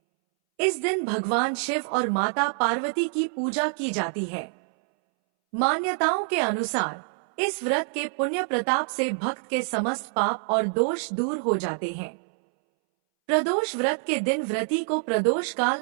इस दिन भगवान शिव और माता पार्वती की पूजा की जाती है। मान्यताओं के अनुसार इस व्रत के पुण्य प्रताप से भक्त के समस्त पाप और दोष दूर हो जाते हैं। प्रदोष व्रत के दिन व्रती को प्रदोष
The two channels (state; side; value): silent; left; 61 dB below the other